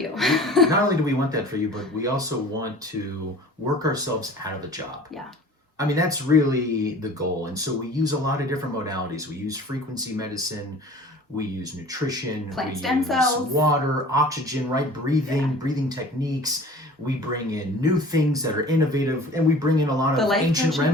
Not only do we want that for you, but we also want to work ourselves out of the job. Yeah. I mean, that's really the goal. And so we use a lot of different modalities. We use frequency medicine. We use nutrition. Plant stem cells. Water, oxygen, right? Breathing techniques. We bring in new things that are innovative, and we bring in a lot of ancient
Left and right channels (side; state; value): both; normal; correlation 0.44